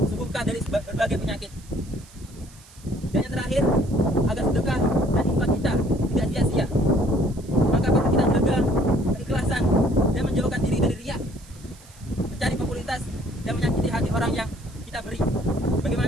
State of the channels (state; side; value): noise; right; hiss, 24 dB below the sound